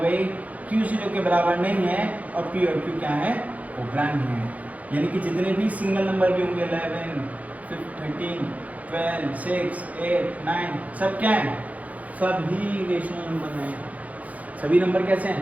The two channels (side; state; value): left; late; 0.072 ms